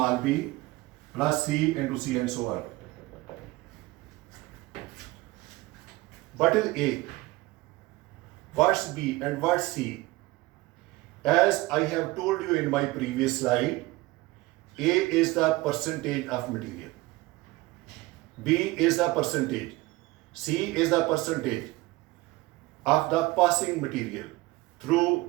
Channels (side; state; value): left; quieter; 20.3 dB